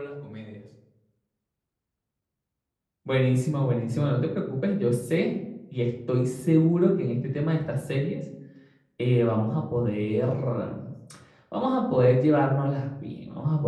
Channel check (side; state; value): both; identical; correlation 1.00